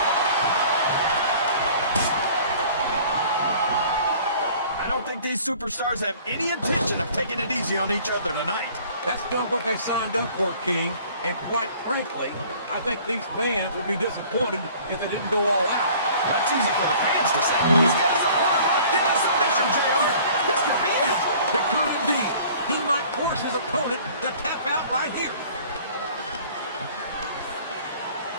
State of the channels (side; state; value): both; inverted; correlation -0.50